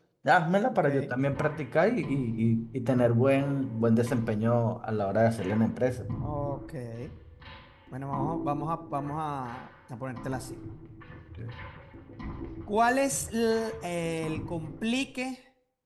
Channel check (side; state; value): both; identical; correlation 1.00